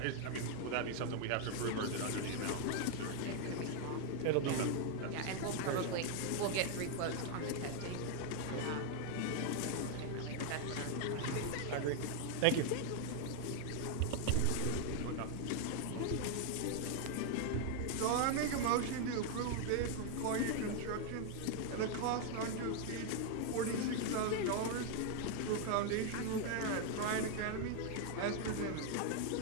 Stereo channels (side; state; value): both; different; correlation 0.00